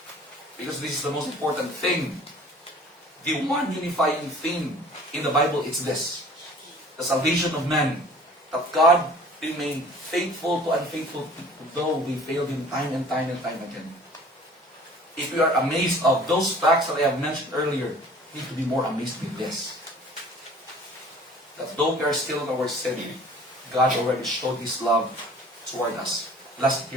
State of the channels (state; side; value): normal; both; correlation 0.48